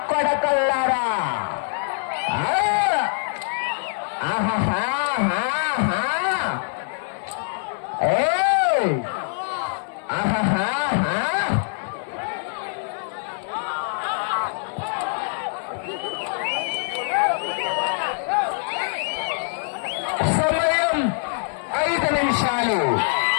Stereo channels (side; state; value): right; silent; 56 dB below the other